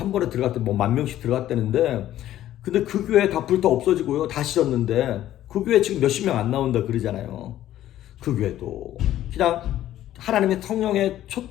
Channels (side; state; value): right; quieter; 12.9 dB